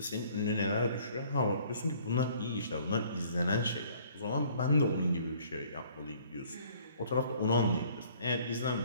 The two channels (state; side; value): inverted; both; correlation -0.57